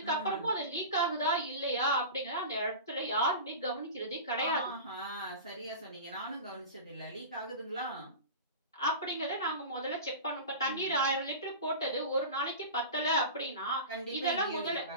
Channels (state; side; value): inverted; both; correlation -0.30